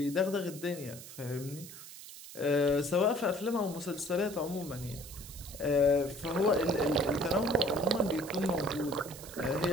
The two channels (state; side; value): noise; right; hiss, 14 dB below the sound